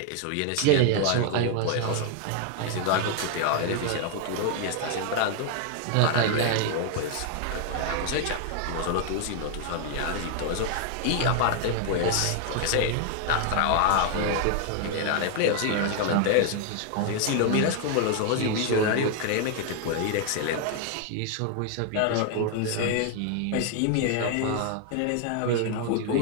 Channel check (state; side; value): different; both; correlation 0.00